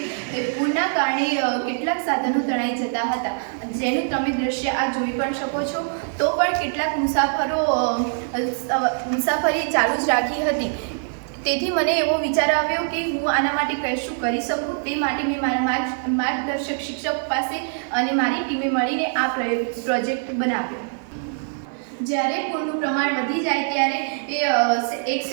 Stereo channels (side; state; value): left; silent; 58 dB below the other